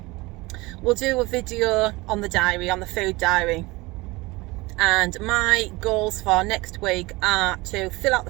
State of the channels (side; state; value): left; quieter; 22.4 dB